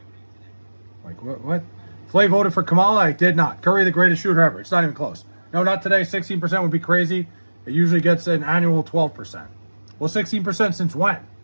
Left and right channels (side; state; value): both; inverted; correlation -1.00